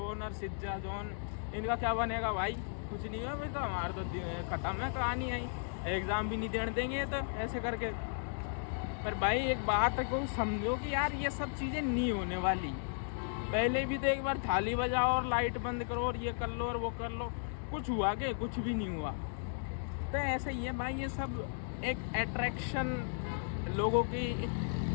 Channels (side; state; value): right; silent; digital silence